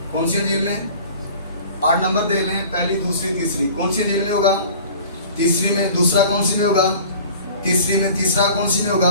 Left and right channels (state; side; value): inverted; both; correlation -0.45